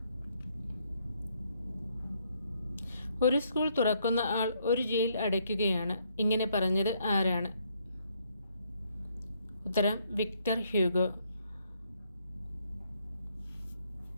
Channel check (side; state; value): both; inverted; correlation -0.71